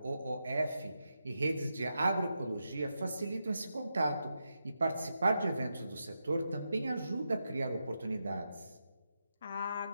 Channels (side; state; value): both; inverted; correlation -0.86